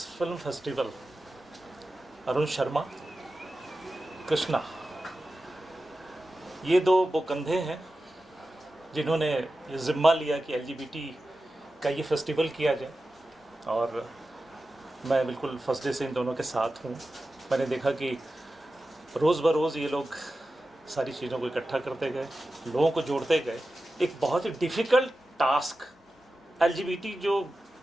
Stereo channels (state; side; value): normal; both; correlation 0.93